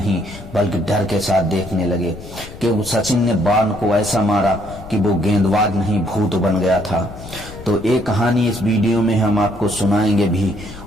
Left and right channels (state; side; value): noise; left; rumble, 15 dB below the sound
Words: बल्कि डर के साथ देखने लगे कि सचिन ने वॉर्न को ऐसा मारा कि वो गेंदबाज नहीं भूत बन गया था। तो एक कहानी इस वीडियो में हम आपको सुनाएंगे भी